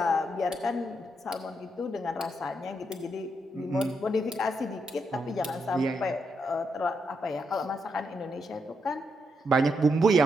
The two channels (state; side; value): normal; both; correlation 0.81